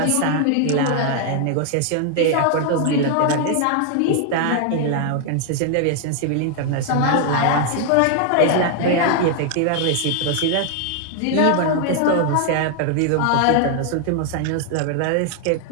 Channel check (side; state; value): both; different; correlation 0.00